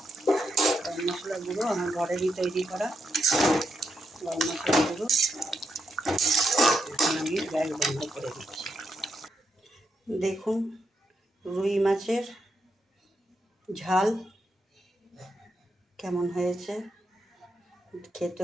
গরম মশলা গুঁড়ো আমার ঘরেরই তৈরি করা গরম মশলা গুঁড়ো। এখন আমি গ্যাস বন্ধ করে দিচ্ছি। দেখুন, রুই মাছের ঝাল কেমন হয়েছে।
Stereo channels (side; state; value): both; normal; correlation 0.82